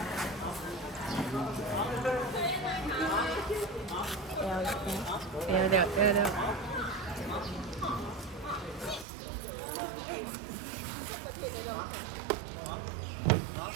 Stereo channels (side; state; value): left; drops out; at 9.1 s